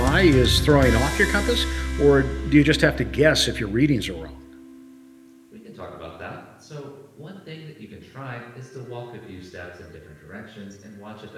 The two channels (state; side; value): identical; both; correlation 1.00